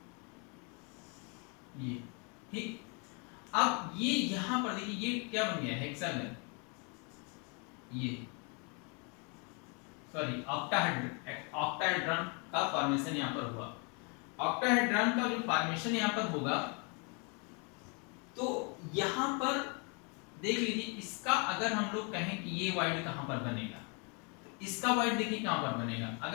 ये, ठीक। अब ये यहाँ पर देखिए ये क्या बन गया, हेक्सागन, ये सॉरी ऑक्टाहेड्रॉन का फॉर्मेशन यहाँ पर हुआ। ऑक्टाहेड्रॉन का जो फॉर्मेशन यहाँ पर होगा, तो यहाँ पर देख लीजिए, इसका अगर हम लोग कहें कि ये वाइड कहाँ पर बनेगा, तो इसका वाइड देखिए कहाँ पर बनेगा।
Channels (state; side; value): quieter; right; 34.5 dB